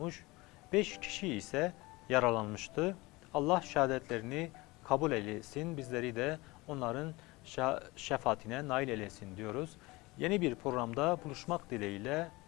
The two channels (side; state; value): right; quieter; 22.4 dB